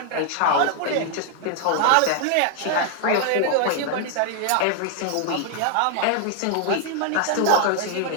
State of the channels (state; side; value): different; both; correlation 0.00